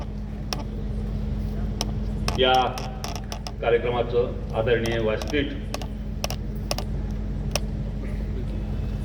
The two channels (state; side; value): identical; both; correlation 1.00